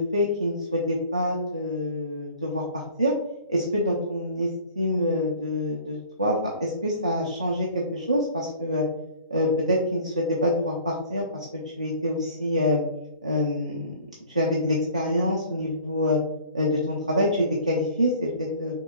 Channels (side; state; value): both; inverted; correlation -0.48